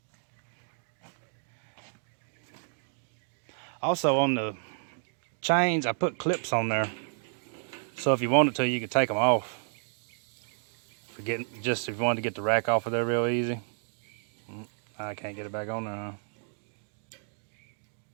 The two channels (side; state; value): left; silent; digital silence